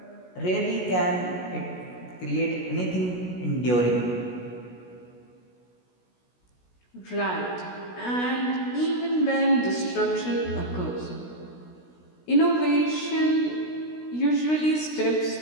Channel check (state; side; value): late; right; 16 ms